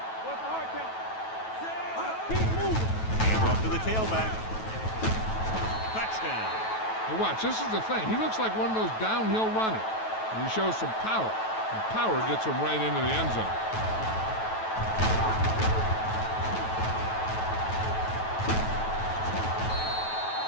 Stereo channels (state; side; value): late; right; 9.2 ms